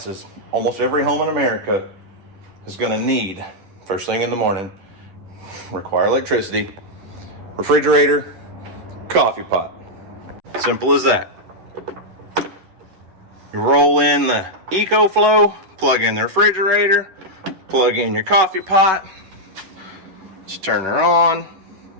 almost every home in America is gonna need, first thing in the morning, require electricity, refrigerator, coffee pot. Simple as that. You roll in the EcoFlow, plug in the refrigerator, plug in your coffee pot, just turn her on,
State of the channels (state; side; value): late; left; 11 ms